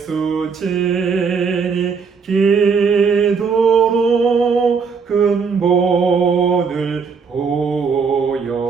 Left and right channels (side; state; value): left; quieter; 5.5 dB